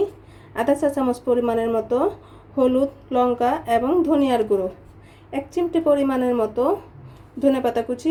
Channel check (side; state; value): both; identical; correlation 1.00